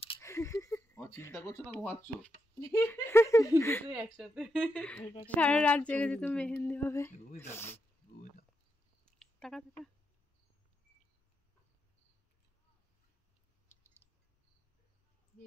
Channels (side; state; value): both; normal; correlation 0.84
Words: চিন্তা করছো না ঘুমাচ্ছ? সারা রাত জেগে যেত মেহেন্দি হবে। টাকা